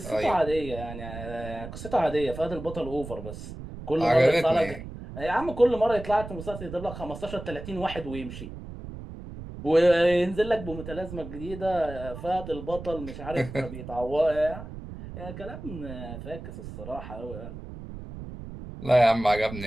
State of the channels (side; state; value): right; noise; rumble, 11 dB below the sound